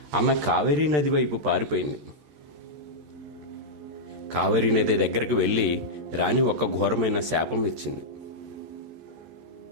ఆమె కావేరీ నది వైపు పారిపోయింది. కావేరీ నది దగ్గరికి వెళ్ళి రాణి ఒక ఘోరమైన శాపం ఇచ్చింది.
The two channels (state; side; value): late; left; 13 ms